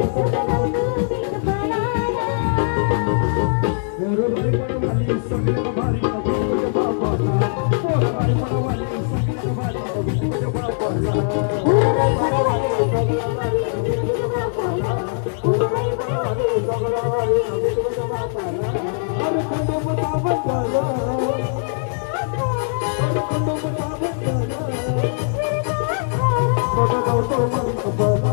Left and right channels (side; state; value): right; silent; digital silence